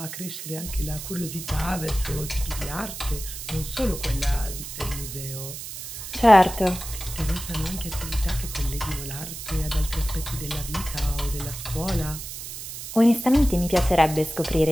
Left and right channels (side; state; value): right; noise; hiss, 9 dB below the sound